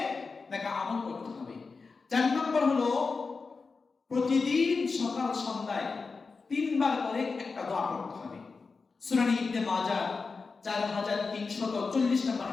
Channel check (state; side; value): quieter; right; 4.5 dB